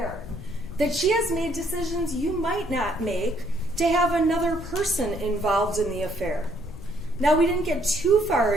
that she has made decisions you might not make to have another person involved in the affair. Now, we didn't get too far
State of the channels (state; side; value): noise; left; rumble, 12 dB below the sound